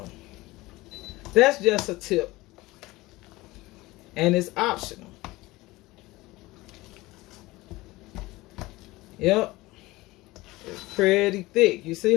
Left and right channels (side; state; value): right; quieter; 20.0 dB